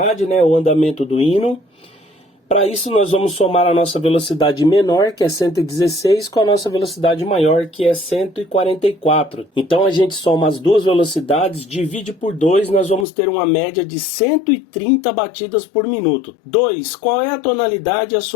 né, o andamento do hino? Para isso nós vamos somar a nossa velocidade menor, que é 116, com a nossa velocidade maior, que é 144. Então a gente soma as duas velocidades, divide por 2, nós vamos ter uma média de 130 batidas por minuto. 2. Qual é a tonalidade e a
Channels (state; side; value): drops out; right; at 13.1 s